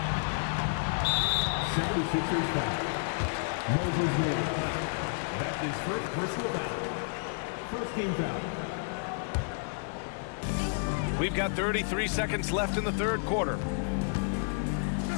76ers foul. Moses Moody. That's his first personal foul. First team foul. We've got 33 seconds left in the third quarter.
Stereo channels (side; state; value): right; silent; digital silence